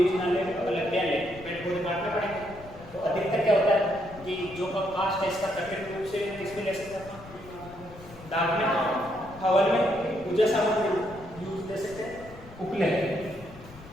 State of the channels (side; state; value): left; noise; rumble, 18 dB below the sound